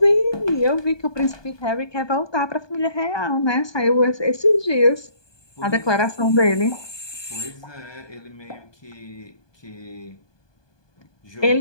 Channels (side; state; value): right; late; 1.2 ms